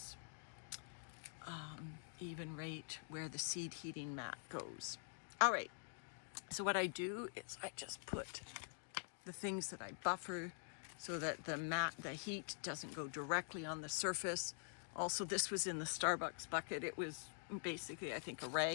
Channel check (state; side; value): silent; right; digital silence